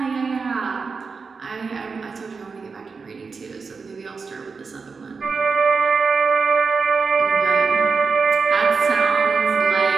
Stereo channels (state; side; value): quieter; left; 4.8 dB